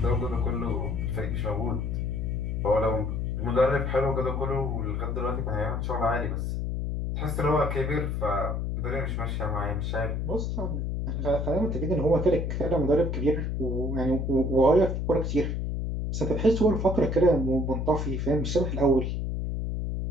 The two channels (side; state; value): left; noise; hum, 1 dB below the sound